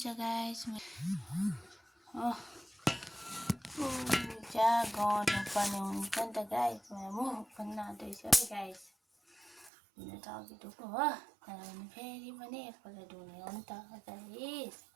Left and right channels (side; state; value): left; drops out; at 9.7 s